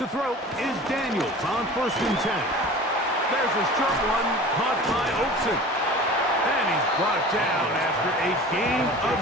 throw is Daniels on first and 10. There's a short one caught by Oakson. And he's brought down after a gain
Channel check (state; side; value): normal; both; correlation 0.39